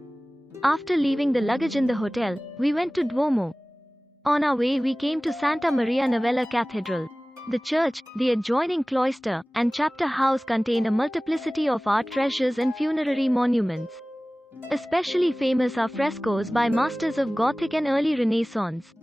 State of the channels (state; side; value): normal; both; correlation 0.98